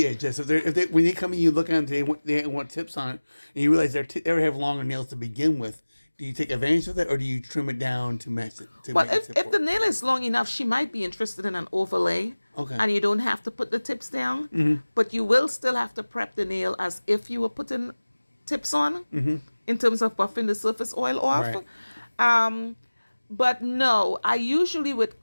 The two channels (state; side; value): inverted; both; correlation -1.00